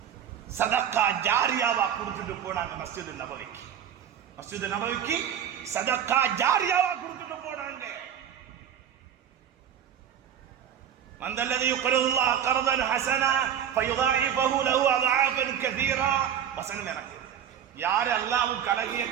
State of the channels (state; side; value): quieter; left; 9.3 dB